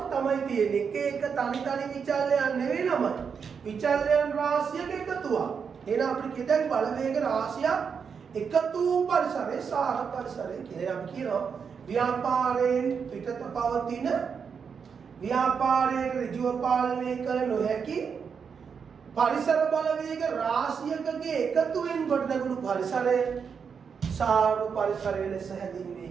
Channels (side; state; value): left; quieter; 6.3 dB